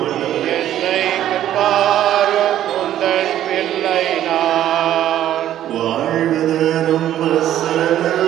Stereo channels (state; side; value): quieter; left; 11.9 dB